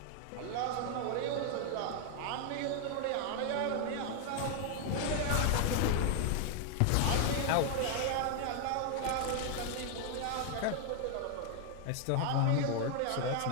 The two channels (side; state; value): both; different; correlation 0.00